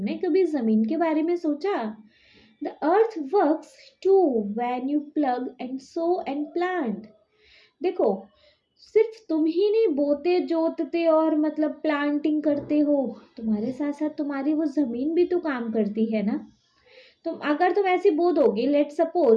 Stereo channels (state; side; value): identical; both; correlation 1.00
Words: कभी ज़मीन के बारे में सोचा? The earth works too when you plough and sow and plant. देखो, सिर्फ तुम ही नहीं बोते जोतते और मतलब प्लांटिंग करते हो, तुम्हारे साथ साथ तुम्हारी वो ज़मीन भी तो काम करती है ना। अगर तुम ऐसे बो दोगे, लेट